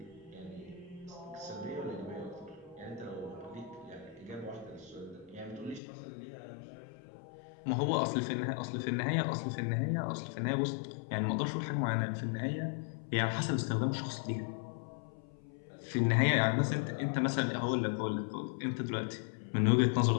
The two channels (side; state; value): right; drops out; at 5.8 s